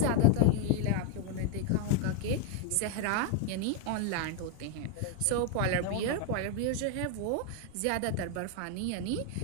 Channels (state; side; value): different; both; correlation 0.01